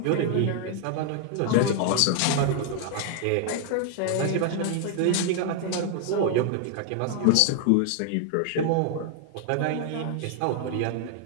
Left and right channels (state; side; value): different; both; correlation 0.00